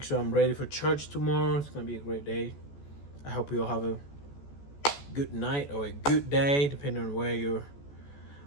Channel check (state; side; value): late; right; 14 ms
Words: sure I'm ready for church tomorrow. It's gonna be a great day. I hope you'll have a good night or a good day, depending on where you're